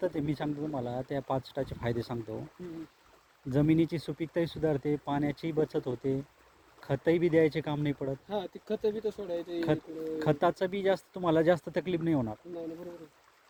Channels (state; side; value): identical; both; correlation 1.00